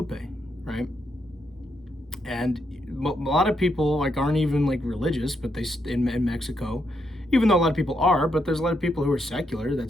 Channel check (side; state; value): both; normal; correlation 0.79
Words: right? And a lot of people like aren't even like religious, but they in Mexico, even though a lot of people are, but there's a lot of people who are secular that